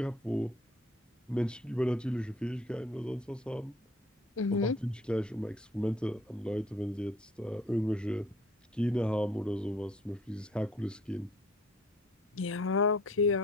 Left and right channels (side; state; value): both; normal; correlation 0.56